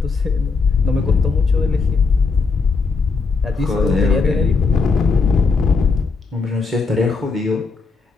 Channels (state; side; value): quieter; right; 4.4 dB